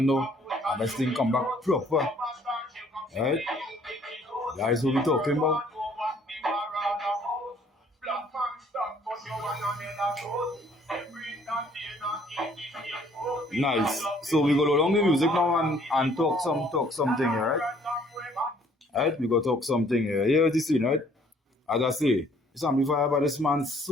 know, and this thing come back proper. Alright, that is what we talking about. Nice. So we go along the music now and talk something, right? Alright, we go talk something here. Here's the scene, right? As I say, This amplifier by this man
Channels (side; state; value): both; normal; correlation 0.60